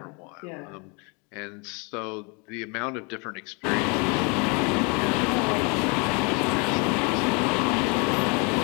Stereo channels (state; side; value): quieter; right; 32.3 dB